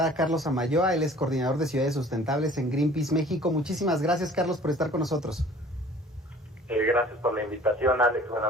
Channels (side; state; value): both; normal; correlation 0.49